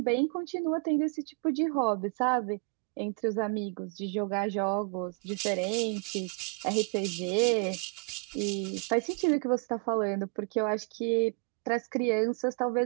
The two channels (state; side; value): quieter; left; 37.3 dB